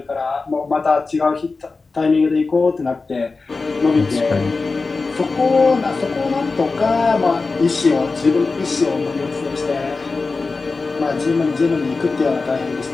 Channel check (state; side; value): quieter; right; 4.0 dB